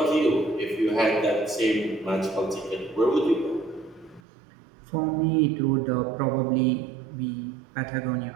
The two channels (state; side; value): drops out; left; at 4.2 s